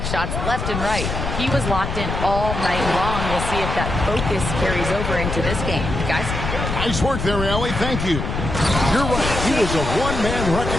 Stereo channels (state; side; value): noise; left; rumble, 4 dB below the sound